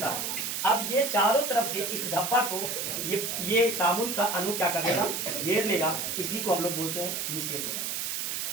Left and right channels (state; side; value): noise; right; hiss, 2 dB below the sound